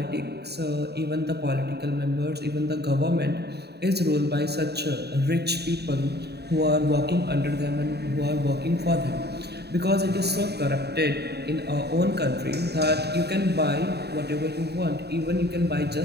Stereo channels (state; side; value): late; left; 0.48 ms